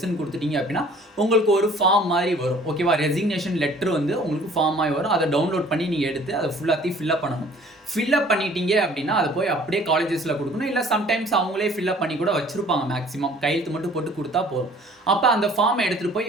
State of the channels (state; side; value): normal; both; correlation 0.53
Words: கொடுத்துட்டீங்க அப்படின்னா உங்களுக்கு ஒரு ஃபார்ம் மாதிரி வரும். ஓகேவா, ரெசிக்னேஷன் லெட்டர் வந்து உங்களுக்கு ஃபார்ம் மாதிரி வரும். அதை டவுன்லோட் பண்ணி நீங்கள் எடுத்து அதை ஃபுல்லாத்தையும் ஃபில்அப் பண்ணணும். ஃபில்அப் பண்ணிட்டீங்க அப்படின்னா அதை போய் அப்படியே காலேஜஸில் கொடுக்கணும். இல்லை சம்டைம்ஸ் அவங்களே ஃபில்அப் பண்ணி கூட வச்சுருப்பாங்க. மேக்ஸிமம் கையெழுத்து மட்டும் போட்டு கொடுத்தா போதும். அப்போ அந்த ஃபார்மை எடுத்துகிட்டு போய்